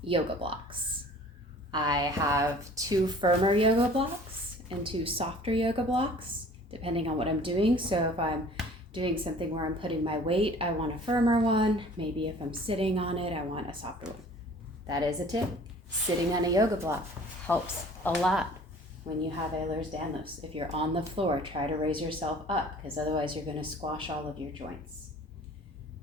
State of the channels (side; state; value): both; normal; correlation 0.49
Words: yoga blocks. I have 2 firmer yoga blocks and 2 softer yoga blocks, depending on what I'm doing. So if I'm doing something where I'm putting my weight, I want a firmer one. Maybe if I'm sitting on it, I want a softer one. That is a tip. Sitting on a yoga block helps a lot when you have Ehlers-Danlos. If you're on the floor, try to raise yourself up because otherwise you're going to squash all of your joints.